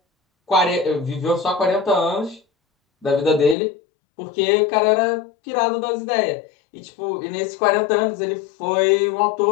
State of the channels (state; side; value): drops out; right; at 3.6 s